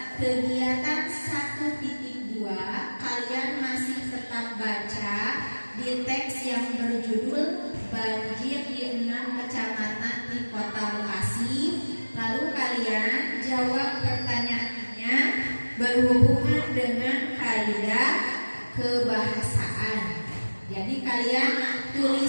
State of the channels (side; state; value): both; inverted; correlation -1.00